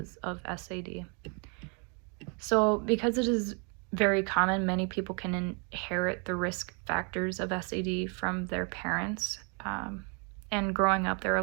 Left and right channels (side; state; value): left; quieter; 35.6 dB